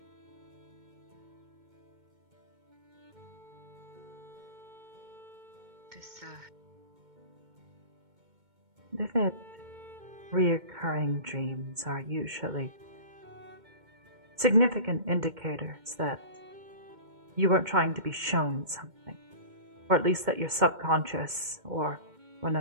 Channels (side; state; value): left; late; 2.2 ms